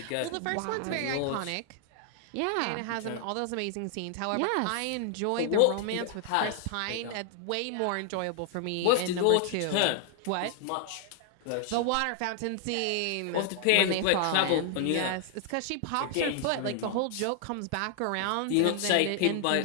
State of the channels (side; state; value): both; different; correlation 0.00